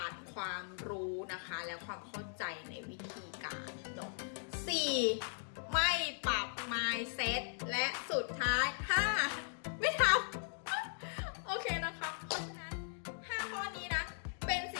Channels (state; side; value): silent; right; digital silence